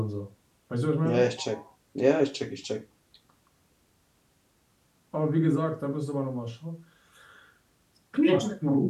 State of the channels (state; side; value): identical; both; correlation 1.00